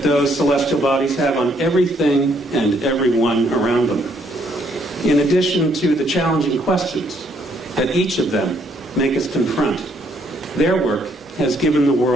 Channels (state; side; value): normal; both; correlation 0.69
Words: those celestial bodies have on everything and everyone around them. In addition to the challenging questions that each of them make us confront, their work has given the